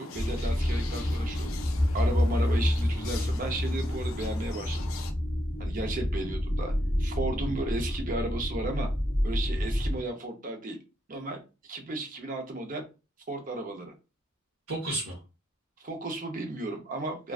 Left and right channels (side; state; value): both; normal; correlation 0.80